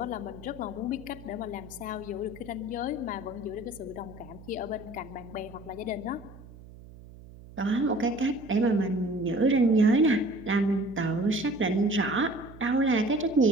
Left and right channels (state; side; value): noise; right; hum, 19 dB below the sound